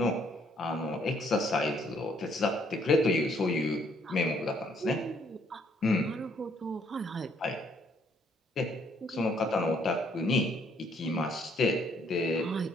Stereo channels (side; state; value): both; normal; correlation 0.67